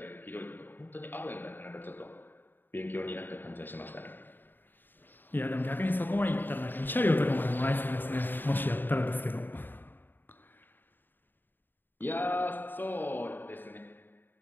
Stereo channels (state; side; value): late; right; 0.093 ms